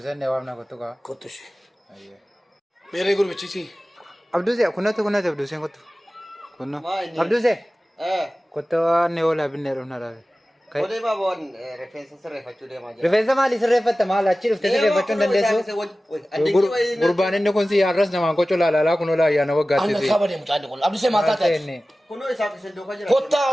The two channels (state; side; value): normal; both; correlation 0.96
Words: نوامنا كتو كا. كتو شي. أيه. मेरे गुरु बच्ची सी عبدو زين كنا عبدو زين كتو. كنا. عبدو زين. كتو نيولا بنيرنا راه. Boleh bawa referensi serifat juga macam. رفيزة مالي سرفت مال أشيل في سرفت شون دندسو. قربان إنه كون سي أرس نمان كوچو لا كونو لا يا نو أنا غاتي. خبر دي متعدد كل أبدي سمعت هذا. Kuno isap sendok aja.